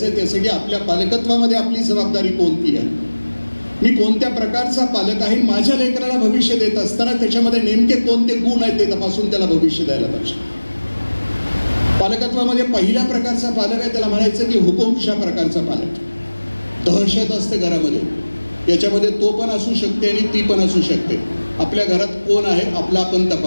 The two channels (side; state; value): both; inverted; correlation -1.00